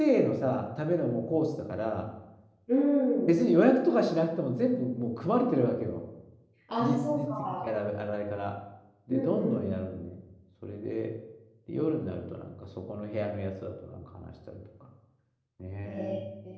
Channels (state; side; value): identical; both; correlation 1.00